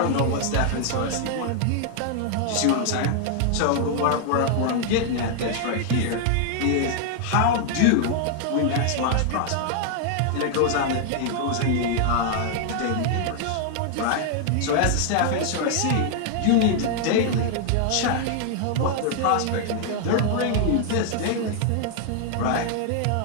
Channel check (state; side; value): different; both; correlation 0.00